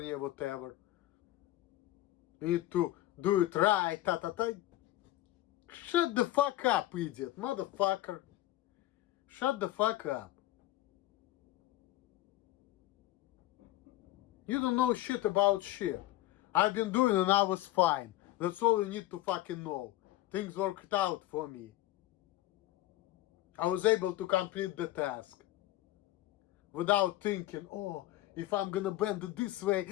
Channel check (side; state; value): right; quieter; 15.6 dB